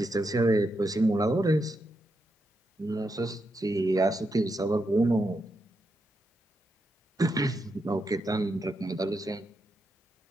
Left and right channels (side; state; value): both; normal; correlation 0.84